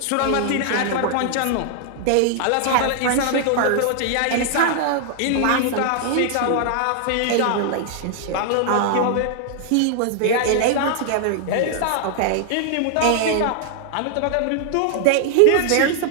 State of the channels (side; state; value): both; different; correlation 0.00